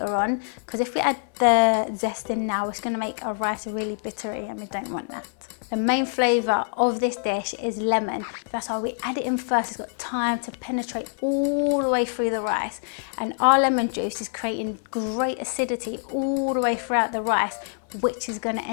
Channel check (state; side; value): silent; right; 62 dB below the other